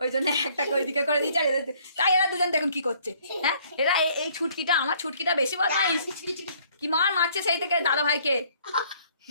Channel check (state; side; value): inverted; both; correlation -0.61